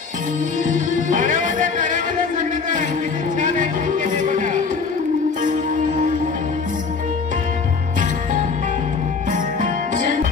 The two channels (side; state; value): right; quieter; 5.0 dB